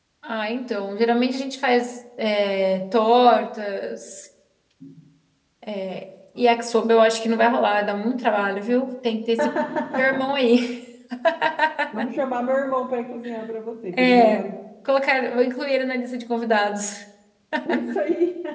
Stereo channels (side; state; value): both; identical; correlation 1.00